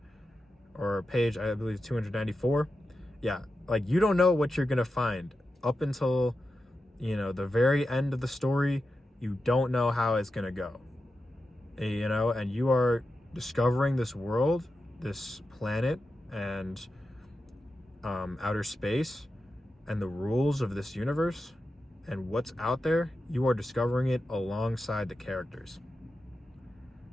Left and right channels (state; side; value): normal; both; correlation 0.90